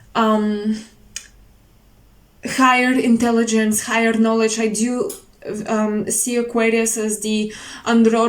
higher intelligence, higher knowledge. I do see Aquarius as the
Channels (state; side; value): identical; both; correlation 1.00